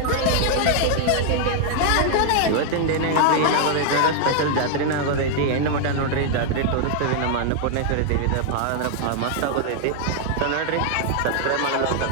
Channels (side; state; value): both; different; correlation 0.00